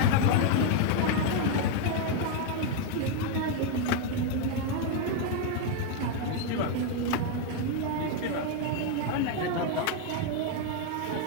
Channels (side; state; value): both; different; correlation 0.01